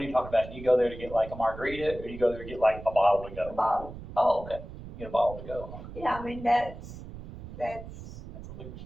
are you talking about? You go there to get like a margarita, or you go there to get like a bottle to the go? bottle. Oh, okay. You get a bottle to go, huh? Yeah, I mean, that's, That's a liquor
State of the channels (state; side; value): noise; right; rumble, 13 dB below the sound